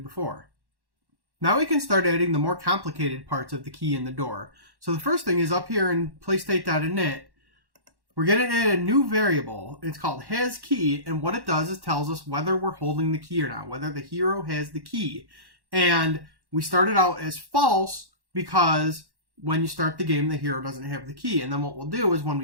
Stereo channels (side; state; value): left; late; 1.1 ms